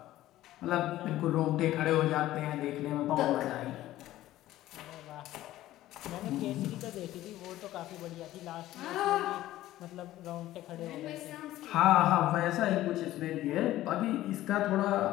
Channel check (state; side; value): quieter; right; 14.9 dB